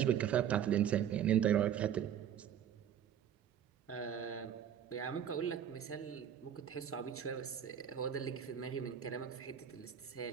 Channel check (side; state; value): left; quieter; 9.3 dB